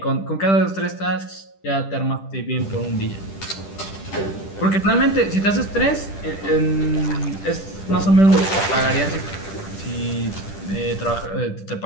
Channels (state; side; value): late; right; 10 ms